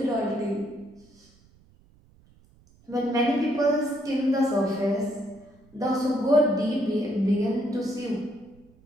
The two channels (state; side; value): noise; right; rumble, 29 dB below the sound